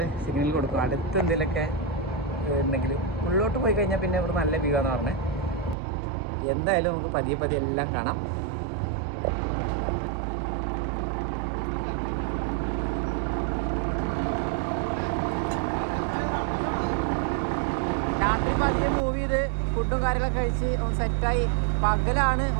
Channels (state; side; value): drops out; left; at 5.8 s